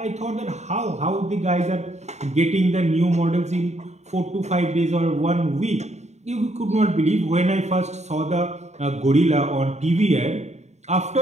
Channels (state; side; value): late; left; 0.32 ms